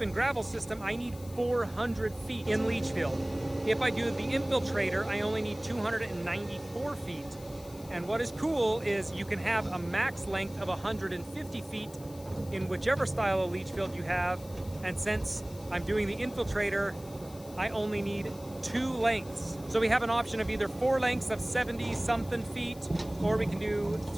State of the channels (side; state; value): left; noise; hiss, 20 dB below the sound